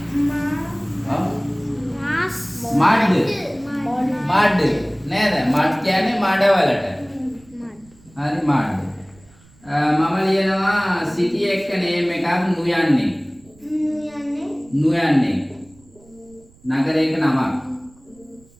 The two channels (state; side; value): noise; right; rumble, 28 dB below the sound